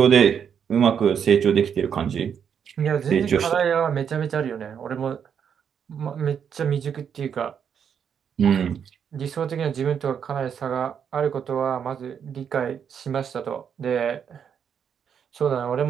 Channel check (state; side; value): quieter; left; 7.7 dB